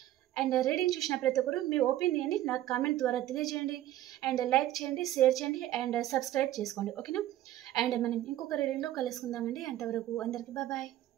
అండ్ రీడింగ్ చూసిన ప్రతి ఒక్కరు మీ ఒపీనియన్ని నాకు కామెంట్ ద్వారా తెలియజేయండి. అండ్ లైక్ చేయండి, షేర్ చేయండి అండ్ సబ్స్క్రైబ్ చేసుకోండి. ఓకేనా? అండ్ మనం ఇంకొక రీడింగ్లో కలుసుకుందామండి. అంతవరకు అందరికీ బాయ్.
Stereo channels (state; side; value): quieter; left; 13.6 dB